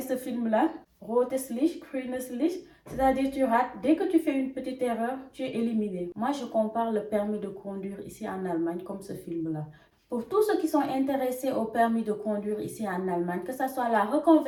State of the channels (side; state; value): both; identical; correlation 1.00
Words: ce film-là? Rotes Licht, grünes Licht. C'est-à-dire tu rates. Dès que tu fais une petite erreur, tu es éliminé. Moi, je compare le permis de conduire ici en Allemagne comme ce film-là. Pour tous ceux qui sont intéressés au permis de conduire ici en Allemagne, que ce soit la